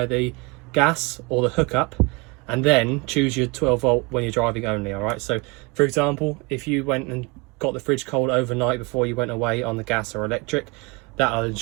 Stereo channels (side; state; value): left; quieter; 27.7 dB